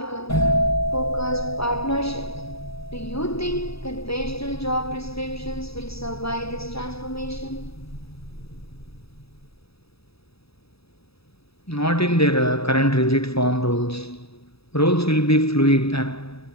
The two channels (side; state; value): right; late; 0.77 ms